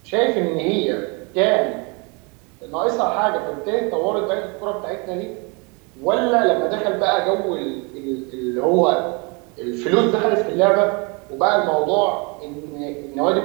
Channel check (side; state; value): left; quieter; 31.5 dB